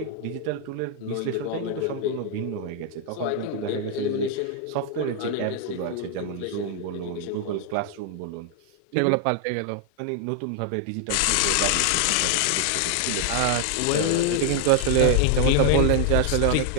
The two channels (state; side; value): different; both; correlation 0.00